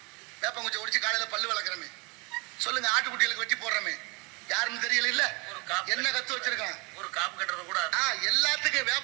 வேப்பங்குச்சி ஒடிச்சு காலையில பல்லு வளர்க்குறமே சொல்லுங்க. ஆட்டுக்குட்டிகளுக்கு வெட்டி போடுறமே யாருன்னு தெரியல. இல்ல என்ன கத்து வச்சிருக்கான்? ஒரு காப்பு கட்டுறது கூட. எல்லாத்துக்கும்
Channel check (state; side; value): quieter; left; 28.8 dB